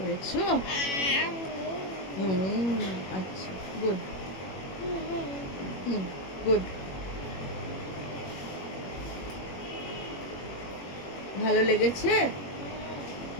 হুম, আচ্ছা, গুড। হুম, গুড। ভালো লেগেছে?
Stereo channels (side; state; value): right; late; 21 ms